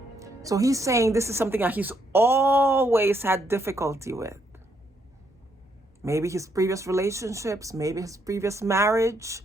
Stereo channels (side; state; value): both; normal; correlation 0.74